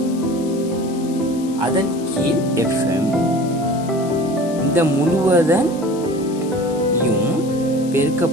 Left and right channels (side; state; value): left; noise; hiss, 19 dB below the sound